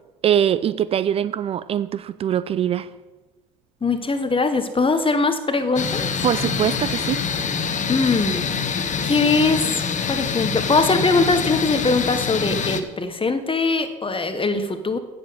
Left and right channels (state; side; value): normal; both; correlation 0.39